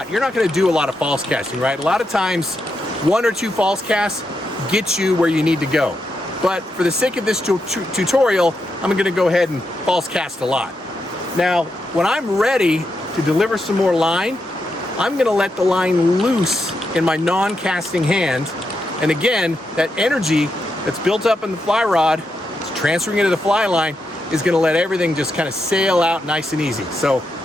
you're not going to do a lot of false casting, right? A lot of times, 1 or 2 false casts get you where you need to go. But for the sake of this tutorial, I'm going to go ahead and false cast a lot. Now, when I'm ready to deliver some more line, I'm going to let the line loose in my non-casting hand. And again, that energy that's built up in the fly rod, it's transferring into the fly line, is going to let everything just kind of sail out nice and easy. So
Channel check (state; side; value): normal; both; correlation 0.84